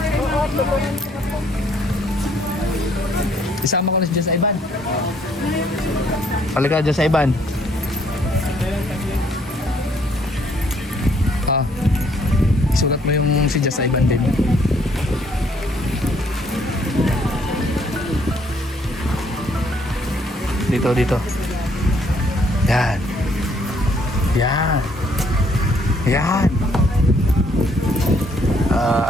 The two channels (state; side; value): normal; both; correlation 0.66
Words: Isama ko na dyan sa Iban. Palika dyan sa Iban. Ah, isulat mo yung si Jess sa Iban din. Dito. Yan. Yan. Yan.